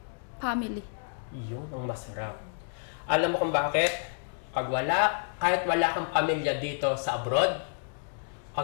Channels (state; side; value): silent; right; digital silence